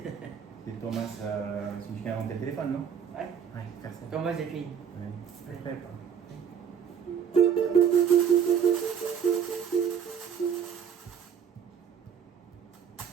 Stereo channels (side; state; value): left; quieter; 7.7 dB